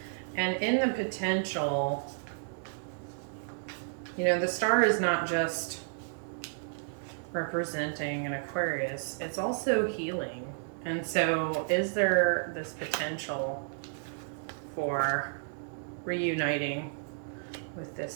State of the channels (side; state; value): left; silent; digital silence